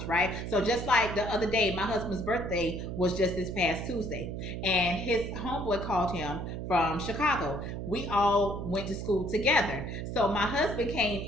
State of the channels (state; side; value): noise; right; hum, 5 dB below the sound